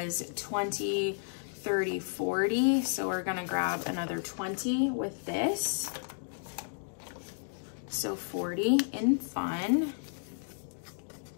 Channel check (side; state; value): right; silent; digital silence